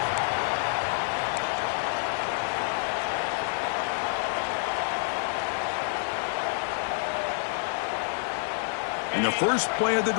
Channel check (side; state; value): right; silent; digital silence